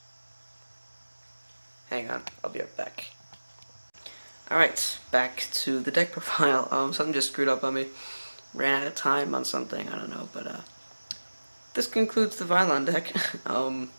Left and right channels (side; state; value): both; inverted; correlation -1.00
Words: Hang on, I'll be right back. Alright, back to the deck profile. Something just screwed up on me. Ran out of time on something, I don't know, but this concludes the Vylon deck.